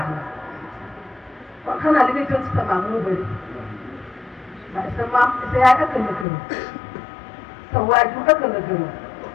na kon xanaa li ngay jël ci sa maam moo bëri waaye sa maam sa yaay ëkkal la gërëm sa waajur ëkkal la gërëm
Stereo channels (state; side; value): drops out; right; at 6.2 s